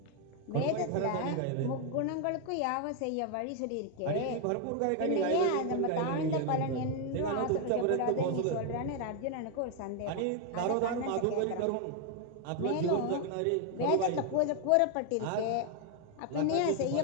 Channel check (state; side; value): different; both; correlation 0.01